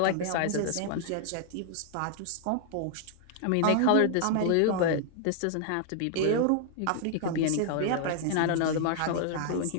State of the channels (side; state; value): both; different; correlation -0.01